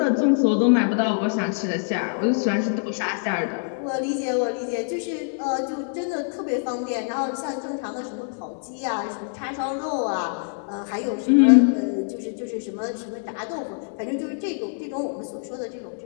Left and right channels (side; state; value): right; silent; 62 dB below the other